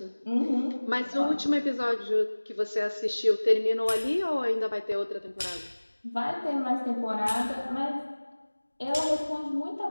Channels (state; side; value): inverted; both; correlation -1.00